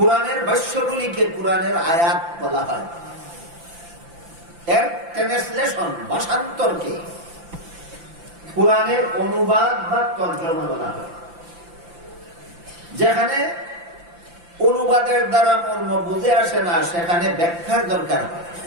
ভাষ্যগুলিকে কোরআনের আয়াত বলা হয়। এর ট্রান্সলেশন ভাষান্তরকে কোরআনের অনুবাদ বা তর্জমা বলা হয়। যেখানে অনুবাদের দ্বারা মর্ম বুঝে আসে না সেখানে ব্যাখ্যার দরকার হয়।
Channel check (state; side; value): late; left; 5.8 ms